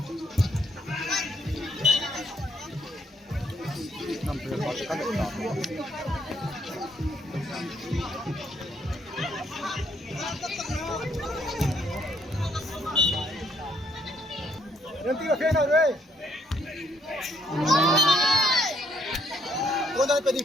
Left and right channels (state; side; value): normal; both; correlation 0.71